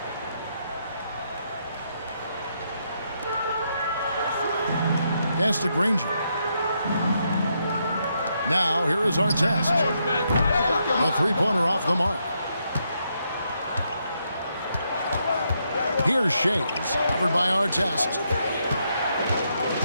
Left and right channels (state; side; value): inverted; both; correlation -0.79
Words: Pass to Granger. Now, here is Artest. A three-pointer off the mark. Here's Shays, covered by Artest.